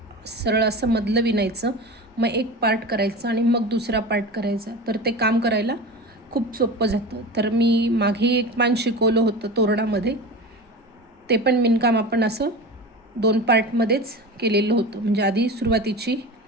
सरळ असं मधलं विणायचं, मग एक पार्ट करायचा आणि मग दुसरा पार्ट करायचा, तर ते काम करायला खूप सोपं जातं. तर मी मागे एक पान शिकवलं होतं तोरणामध्ये, ते पण विणकाम आपण असं 2 पार्टमध्येच केलेलं होतं. म्हणजे आधी सुरुवातीची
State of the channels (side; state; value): both; normal; correlation 0.30